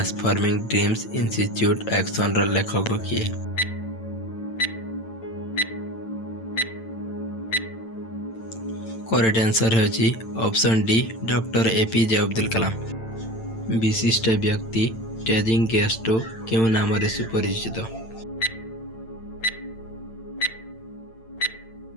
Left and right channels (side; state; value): right; late; 8.9 ms